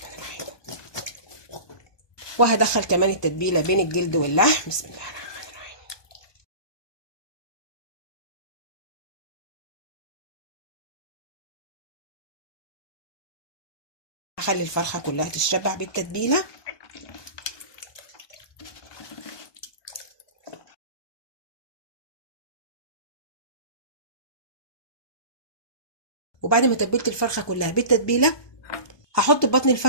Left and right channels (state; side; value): late; right; 1.2 ms